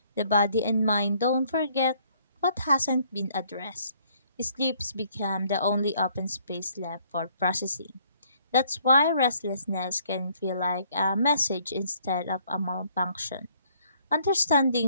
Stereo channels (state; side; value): inverted; both; correlation -0.64